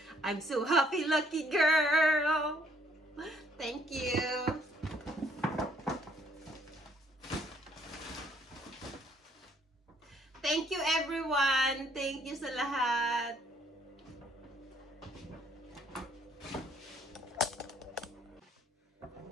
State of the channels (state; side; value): normal; both; correlation 0.65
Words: I'm so happy, lucky girl. Thank you. Thank you everyone. Thank you sa lahat.